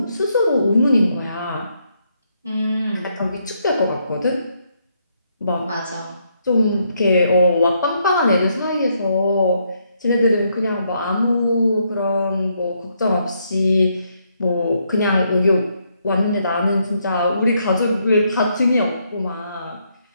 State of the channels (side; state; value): both; inverted; correlation -0.75